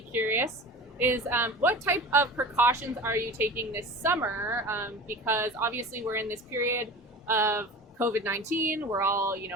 curious, is what type of precautions are you taking this summer? Because obviously we're in this period of COVID-19. We're all,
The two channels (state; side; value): normal; both; correlation 0.34